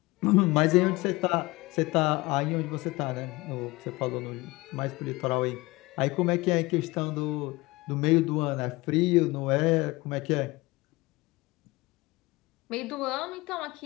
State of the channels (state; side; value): quieter; right; 21.8 dB